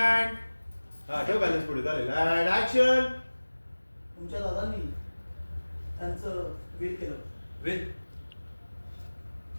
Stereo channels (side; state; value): both; inverted; correlation -1.00